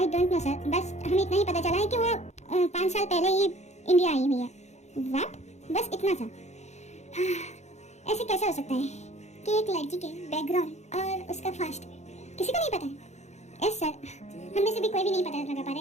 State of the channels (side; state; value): right; late; 0.33 ms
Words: डोंट नो सर, बस हमें इतना ही पता चला है कि वो 5 साल पहले ही इंडिया आई हुई है। व्हाट? बस इतना सा। ऐसे कैसे हो सकता है कि एक लड़की के बैकग्राउंड और उसका फास्ट किसी को नहीं पता है? यस सर, हम में से भी कोई भी नहीं पता लगा पा रहा